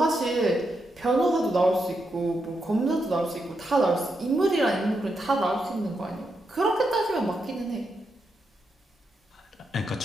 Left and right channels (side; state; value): both; normal; correlation 0.84